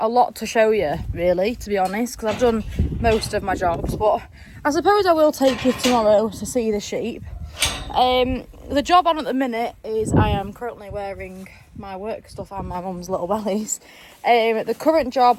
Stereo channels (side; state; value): both; identical; correlation 1.00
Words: lot to show you, really, to be honest, because I've done most of my jobs, but I suppose I will take you tomorrow to see the sheep. The job on at the minute is I am currently wearing my work stuff and my mum's little bellies. The current